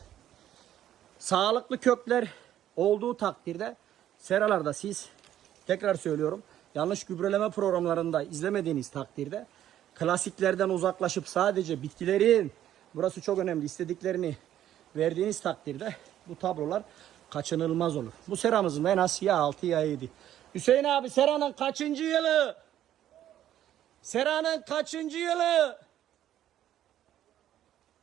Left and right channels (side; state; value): left; quieter; 11.7 dB